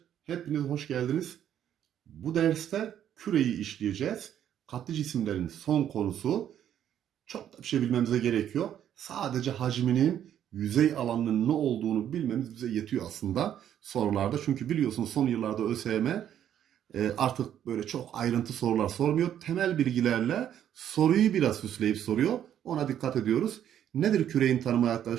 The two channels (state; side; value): quieter; left; 10.2 dB